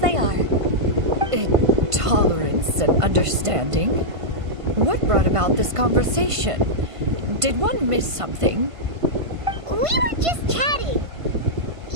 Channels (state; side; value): late; left; 1.5 ms